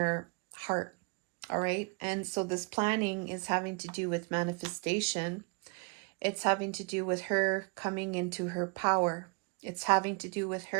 heart. All right. And so this planning is having to do with manifestation. It's having to do with her coming into her power. It's having to do with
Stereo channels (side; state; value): left; quieter; 32.8 dB